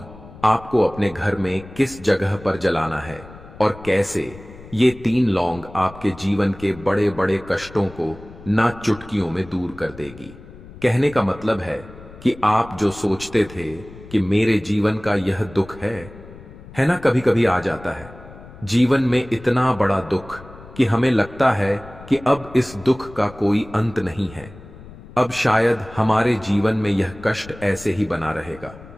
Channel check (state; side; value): noise; left; rumble, 18 dB below the sound